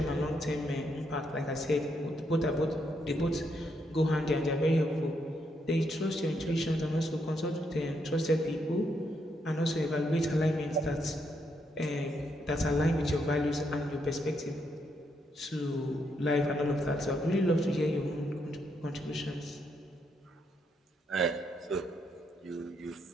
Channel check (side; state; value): both; normal; correlation 0.77